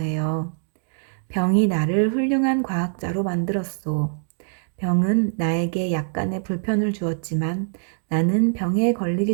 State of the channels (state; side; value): silent; left; digital silence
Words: 병이 나를 훌륭한 과학자로 만들었소. 병은 나에게 약간의 불편을 주었지만 나는 병에